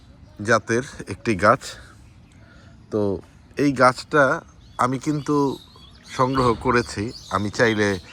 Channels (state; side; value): identical; both; correlation 1.00